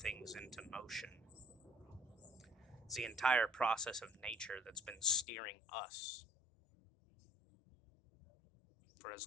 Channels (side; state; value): right; drops out; at 5.2 s